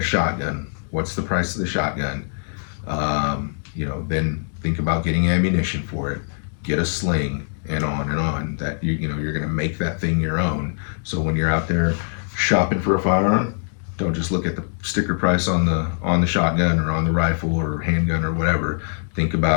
shotgun. What's the price of the shotgun? Then think about getting ammunition for it, get a sling, and on. That you're going to make that thing your own. So when you're out there shopping for a firearm, don't just look at the sticker price on the shotgun or on the rifle or handgun or whatever. Think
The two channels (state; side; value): silent; right; digital silence